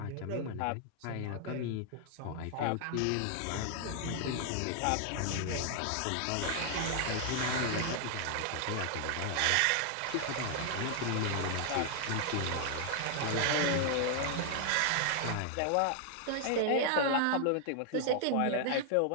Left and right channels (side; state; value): both; different; correlation 0.00